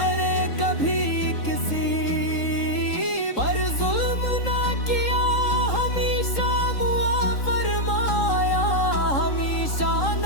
अरे कभी किसी पर जुल्म ना किया, हमेशा मुआ फरमाया, हमेशा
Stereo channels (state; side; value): late; right; 3.8 ms